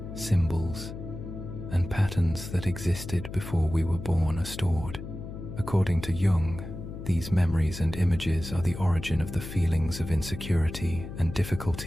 symbols, and patterns that existed before we were born are stored. According to Jung, these memories and images are the origin of the feelings of insecurity and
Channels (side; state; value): left; noise; hum, 10 dB below the sound